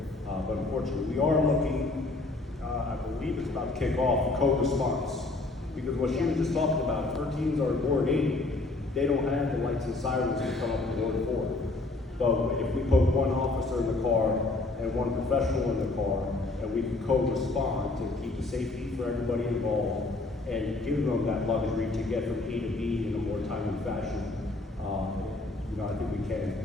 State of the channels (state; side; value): quieter; right; 3.1 dB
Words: But unfortunately, we are looking, I believe it's about to kick off, code response. Because what she was just talking about, if her teams are in Ward 8, they don't have the lights and sirens to come up in Ward 4. But if we put one officer in the car and one professional in the car, and we can co-respond to keep the safety for everybody involved and give them that luxury to get from A to B in a more timely fashion, I think we